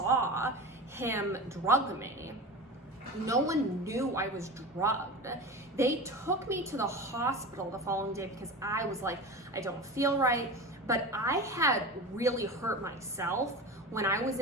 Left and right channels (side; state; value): both; normal; correlation 0.29